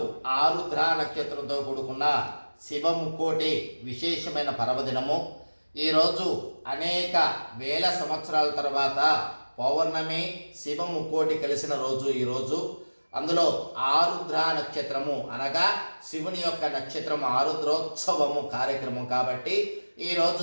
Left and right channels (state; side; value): inverted; both; correlation -1.00